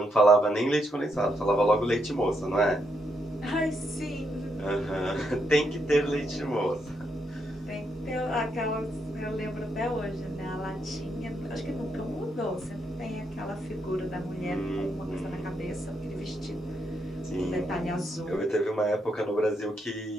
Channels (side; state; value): both; normal; correlation 0.79